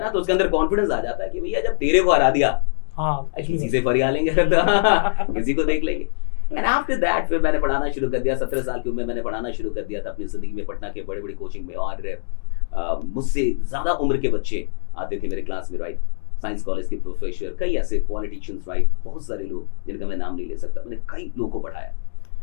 ना, तो उसके अंदर कॉन्फिडेंस आ जाता है कि भैया जब तेरे को हरा दिया, किसी से फरिया लेंगे, किसी को देख लेंगे। एंड आफ्टर दैट फिर मैंने पढ़ाना शुरू कर दिया। 17 साल की उम्र में मैंने पढ़ाना शुरू कर दिया था अपनी जिंदगी में, पटना के बड़े बड़े कोचिंग में। और मुझसे ज्यादा उम्र के बच्चे आते थे मेरे क्लास में, राइट। साइंस कॉलेज के प्रोफेसर, कई ऐसे पॉलिटिशियंस, राइट, बहुत सारे लोग जिनका मैं नाम नहीं ले सकता। मैंने कई लोगों को पढ़ाया।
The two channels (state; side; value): silent; right; digital silence